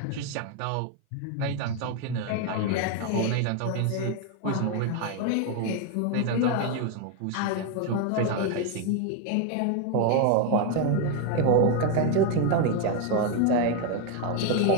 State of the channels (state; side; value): different; both; correlation 0.02